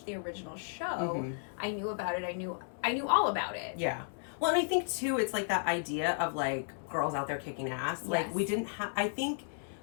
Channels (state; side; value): silent; right; 55 dB below the other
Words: the original show, I knew about it. I knew all about it. Yeah. Well, and I think, too, it's like that idea of, like, girls out there kicking ass. Yes. Like, we didn't have, I think